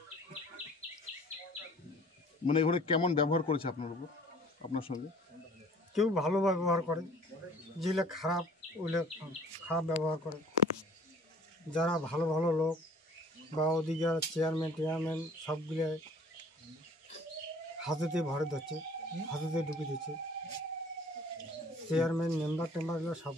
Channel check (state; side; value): normal; both; correlation 0.51